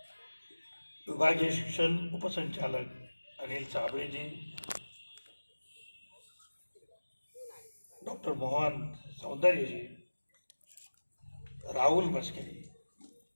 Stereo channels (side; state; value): both; inverted; correlation -1.00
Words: विभागीय शिक्षण उपसंचालक अनिल साबळेजी, डॉक्टर मोहन सौंदर्यजी, राहुल मस्केरी,